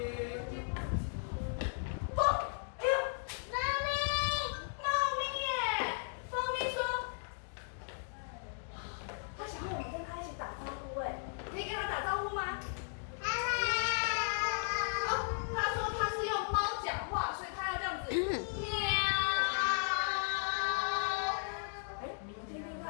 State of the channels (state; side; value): silent; right; digital silence